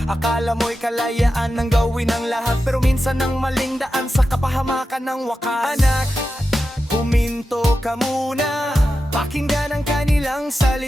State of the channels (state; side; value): normal; both; correlation 0.91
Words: Akala mo'y kalayaan ng gawin ang lahat. Pero minsan ang maling daan sa kapahamakan ng wakas. Anak, huminto ka muna. Pakinggan ang kanilang